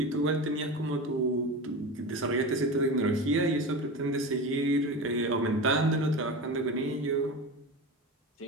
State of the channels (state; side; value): normal; both; correlation 0.26